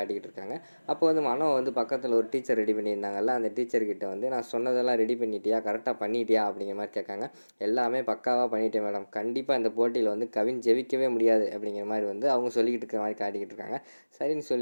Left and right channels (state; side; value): inverted; both; correlation -1.00